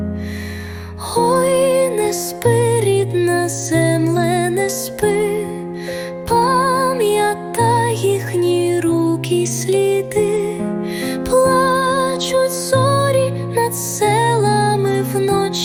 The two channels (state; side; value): identical; both; correlation 1.00